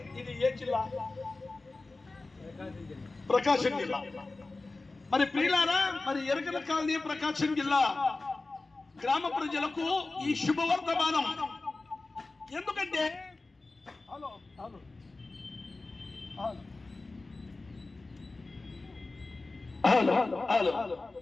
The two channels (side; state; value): right; quieter; 3.4 dB